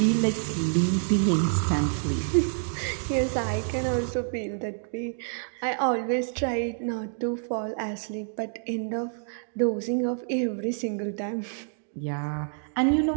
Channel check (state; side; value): silent; left; digital silence